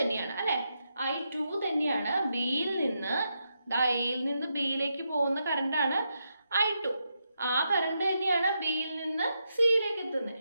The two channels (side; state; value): both; inverted; correlation -0.83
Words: അല്ലേ. I2 തന്നെയാണ്. ബിയിൽ നിന്ന് എയിൽ നിന്ന് ബിയിലേക്ക് പോകുന്ന കറണ്ടാണ് I2. ആ കറണ്ട് തന്നെയാണ് ബിയിൽ നിന്ന് സിയിലേക്ക്